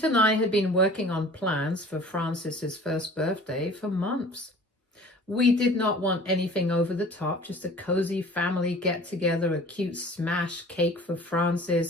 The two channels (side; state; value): both; normal; correlation 0.46